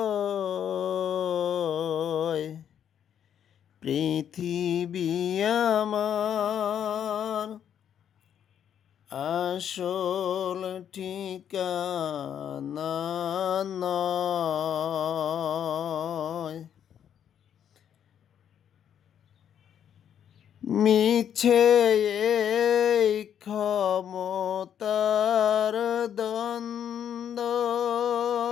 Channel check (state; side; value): quieter; right; 9.2 dB